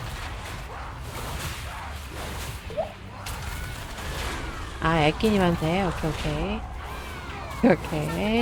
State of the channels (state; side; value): identical; both; correlation 1.00